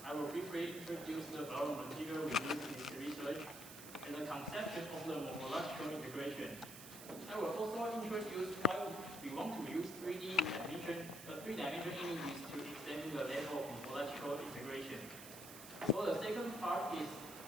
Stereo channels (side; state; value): right; noise; hiss, 13 dB below the sound